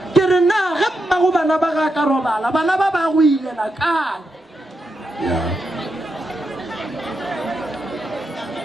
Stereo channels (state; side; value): normal; both; correlation 0.85